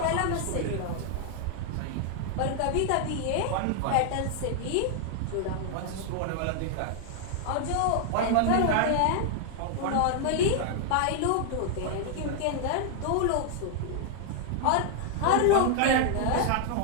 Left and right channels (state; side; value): different; both; correlation 0.00